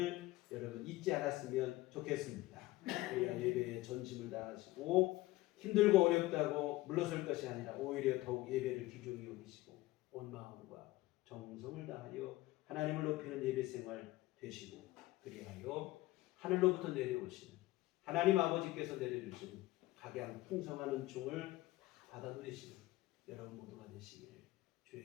여러분 잊지 않았으면 좋겠습니다. 우리가 예배에 전심을 다하시고 힘들고 어렵다고 물러설 것이 아니라 오히려 더욱 예배를 귀중히 여기시고 온 마음과 정성을 다하여 하나님을 높이는 예배 생활 되시고 그리하여 하늘로부터 내려오시는 하나님 아버지께서 내려주시는 각양 풍성한 은총을 다 받아 누리시는 여러분 모두가 되시기를 주의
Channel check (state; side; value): quieter; right; 18.4 dB